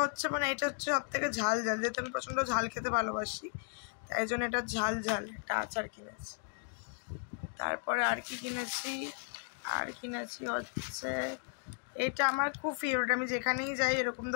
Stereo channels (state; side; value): silent; right; 54 dB below the other